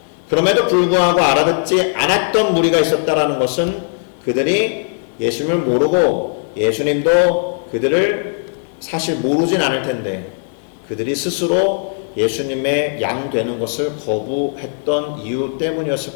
그럼에도 불구하고 알아듣지 않았던 무리가 있었다라는 것은 그들이 예수님을 모르고 예수님도 그들을 사실 모르진 않을 텐데 그들이 스스로 예수님의 양 되는 것을 거부했던 이유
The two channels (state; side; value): silent; right; digital silence